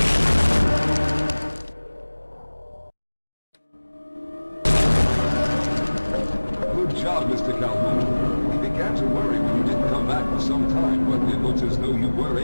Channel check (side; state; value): both; inverted; correlation -1.00